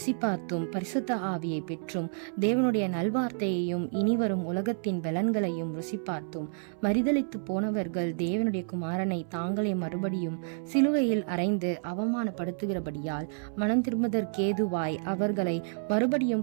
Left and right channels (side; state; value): left; silent; 58 dB below the other